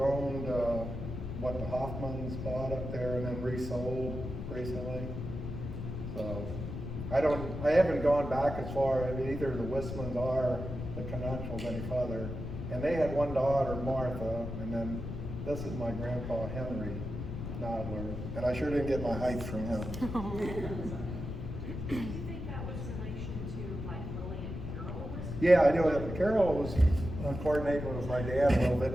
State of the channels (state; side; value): noise; left; rumble, 6 dB below the sound